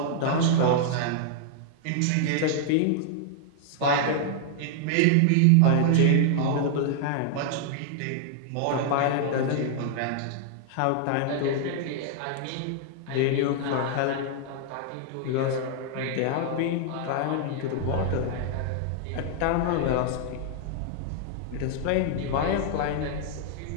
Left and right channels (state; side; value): different; both; correlation 0.00